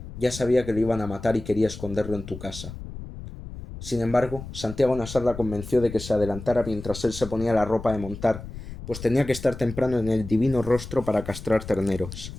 ya sabía que lo iban a matar y quería esconderlo en tu casa. Sin embargo, Santiago Nassar la convenció de que se adelantara mientras él se ponía la ropa de montar, pues tenía que estar temprano en el divino rostro para castrar terneros.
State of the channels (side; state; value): left; noise; rumble, 11 dB below the sound